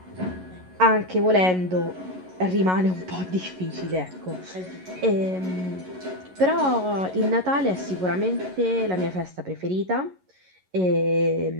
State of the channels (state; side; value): late; left; 11 ms